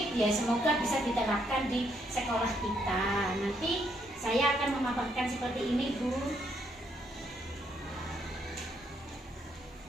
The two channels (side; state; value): both; normal; correlation 0.73